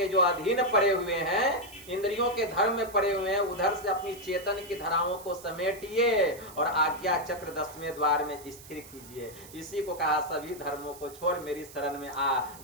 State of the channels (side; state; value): right; noise; hiss, 19 dB below the sound